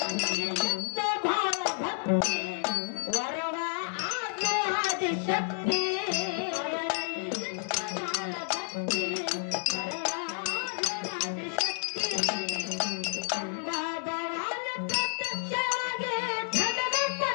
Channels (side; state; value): right; silent; digital silence